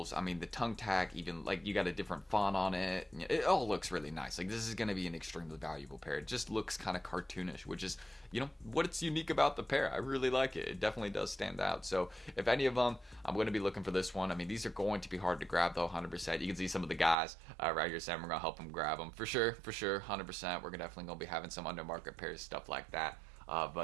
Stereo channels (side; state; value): left; drops out; at 17.2 s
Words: I mean, the tongue tag, even like you got a different font on it. It all looks really nice. Like, this is going to be an extremely valuable pair. It just looks kind of cartoonish, which is, what's unique about the pair. I really like it. It definitely does stand out. So if any of them, I'm going to be looking for this one. I mean, these are going to be hard to grab though, 100%. You can see some of the guys right here saying we're going to help them grab them. For sure, 100%. We're definitely going to be having some undermarket pairs, stuff like that.